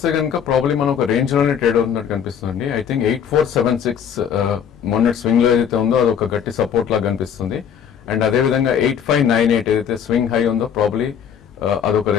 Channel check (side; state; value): right; quieter; 8.1 dB